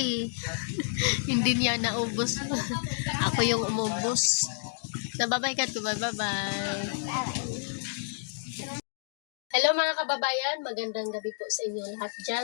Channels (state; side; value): silent; right; digital silence